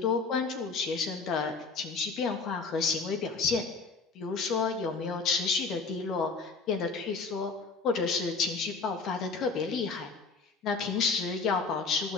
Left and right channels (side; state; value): right; quieter; 4.5 dB